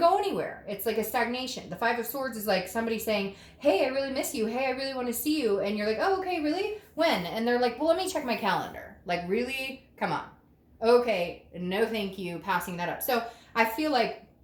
anywhere. It's like a stagnation. The Five of Swords is like somebody saying, hey, I really miss you. Hey, I really want to see you. And you're like, oh, okay, really? When? And they're like, well, let me check my calendar. Like, really? Come on. Okay, no thank you, passing that up. So I feel like,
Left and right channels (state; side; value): identical; both; correlation 1.00